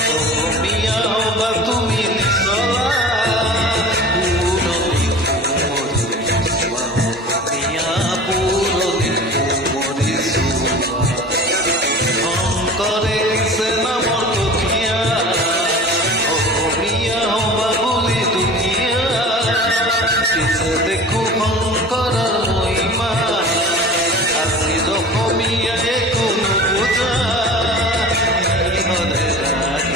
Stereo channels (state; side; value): normal; both; correlation 0.38